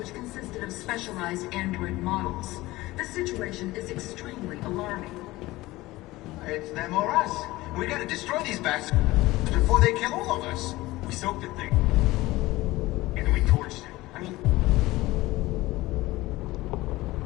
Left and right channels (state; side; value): quieter; right; 18.9 dB